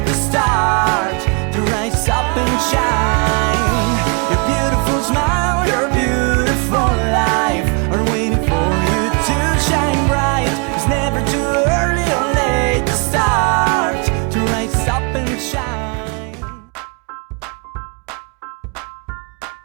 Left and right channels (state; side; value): quieter; left; 34.5 dB